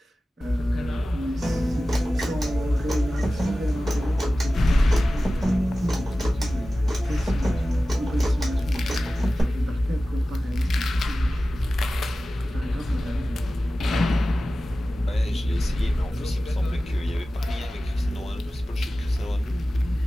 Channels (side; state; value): both; normal; correlation 0.96